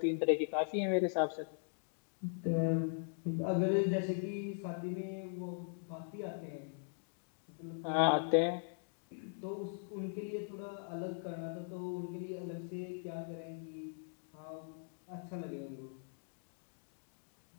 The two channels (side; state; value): right; silent; digital silence